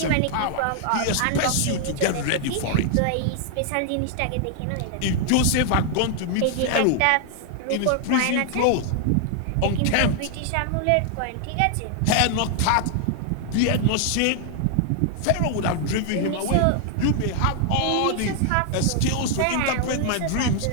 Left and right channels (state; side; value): different; both; correlation 0.00